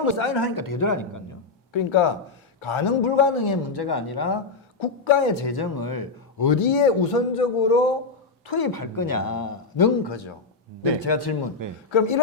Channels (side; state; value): right; quieter; 4.0 dB